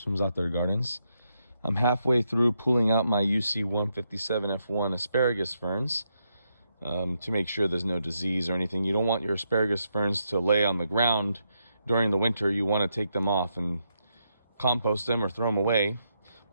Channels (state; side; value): inverted; both; correlation -0.81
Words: from ZAATARGARDENS. I'm halfway through pulling out my UC 157F1 asparagus ferns to make sure there's no disease or anything. You don't want your asparagus ferns to lay on the ground during the winter. You want to take them off and compost them or throw them away.